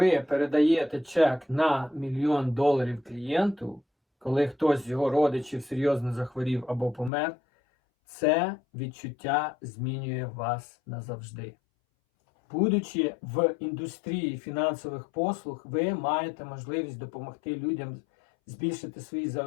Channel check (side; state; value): right; drops out; at 7.1 s